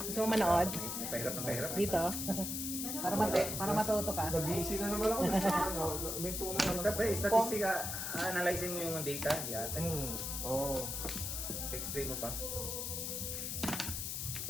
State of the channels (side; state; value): left; noise; hiss, 3 dB below the sound